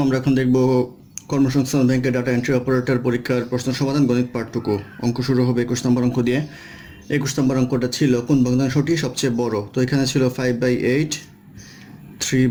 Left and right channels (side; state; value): both; identical; correlation 1.00